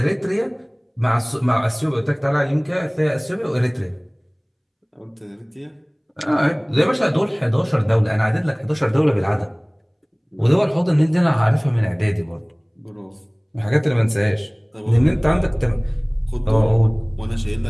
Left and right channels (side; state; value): both; identical; correlation 1.00